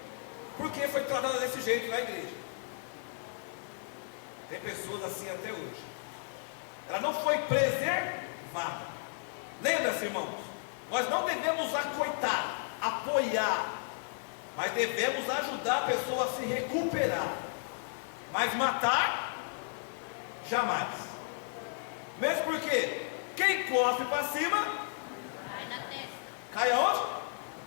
porque foi tratada desse jeito na igreja. Tem pessoas assim até hoje. Ela não foi preservada. Lembra-se, irmãos, nós não devemos acoitar, apoiar, mas devemos ajudar a pessoa a se recuperar. Mas matar, jamais. Mesmo porque quem cospe para cima, Cai na testa. cai aonde?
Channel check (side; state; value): right; silent; digital silence